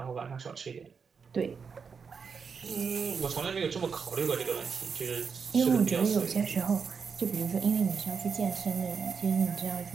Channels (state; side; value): quieter; left; 5.9 dB